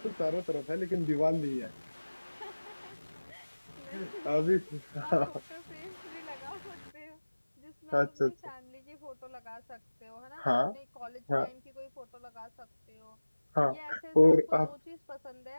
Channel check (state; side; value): inverted; both; correlation -1.00